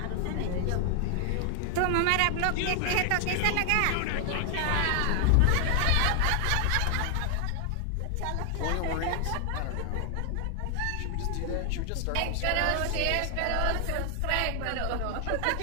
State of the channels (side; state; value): both; different; correlation 0.00